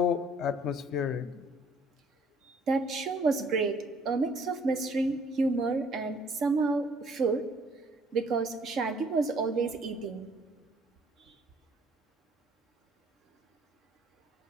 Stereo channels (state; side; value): normal; both; correlation 0.60